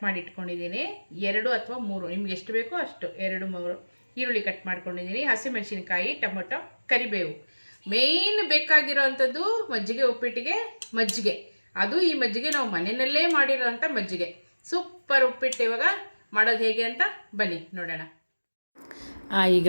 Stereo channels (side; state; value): both; inverted; correlation -1.00